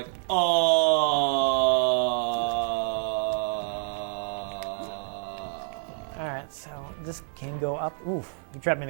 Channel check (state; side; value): silent; left; 60 dB below the other